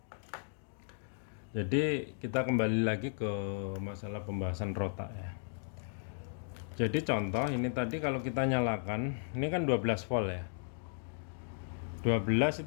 Jadi kita kembali lagi ke masalah pembahasan rotak ya. Jadi contoh ini tadi kalau kita nyalakan, ini kan 12 volt ya, 12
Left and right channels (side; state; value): right; silent; digital silence